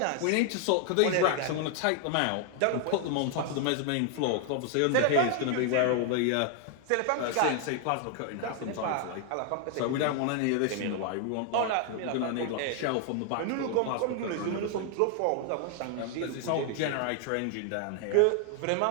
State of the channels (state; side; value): different; both; correlation 0.00